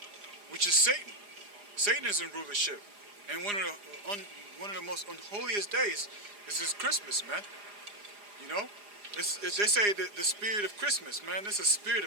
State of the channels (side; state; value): left; late; 4.9 ms